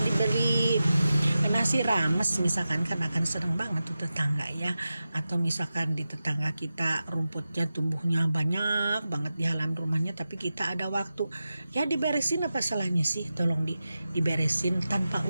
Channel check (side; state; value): both; inverted; correlation -0.92